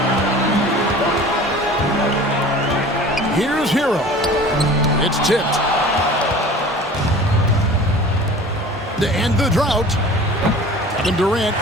Here's Hero. It's tipped. To end the drought, Kevin Durant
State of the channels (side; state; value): both; normal; correlation 0.42